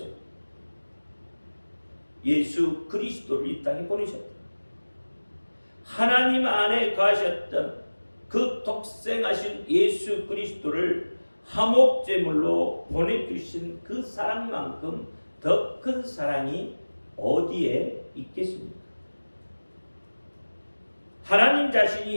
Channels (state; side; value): inverted; both; correlation -1.00